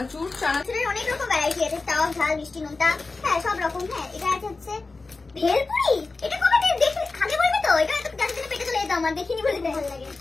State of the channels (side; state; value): right; quieter; 3.7 dB